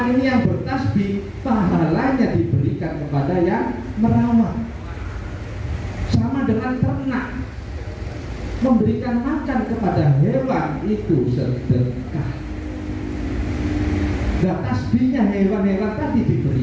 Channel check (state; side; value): identical; both; correlation 1.00